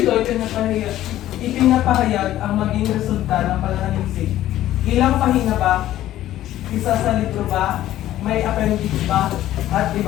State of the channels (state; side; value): quieter; right; 13.6 dB